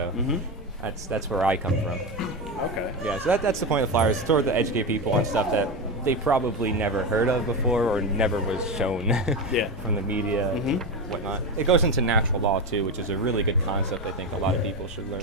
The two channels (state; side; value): normal; both; correlation 0.16